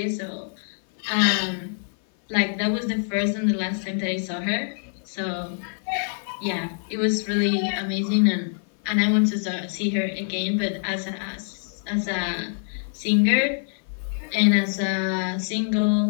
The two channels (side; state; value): right; silent; 55 dB below the other